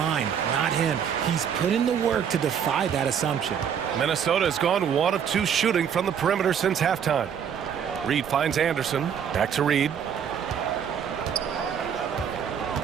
not him. He's put in the work to defy that assumption. Minnesota has gone 1 of 2 shooting from the perimeter since halftime. Reed finds Anderson. Back to Reed.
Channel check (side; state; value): left; quieter; 8.0 dB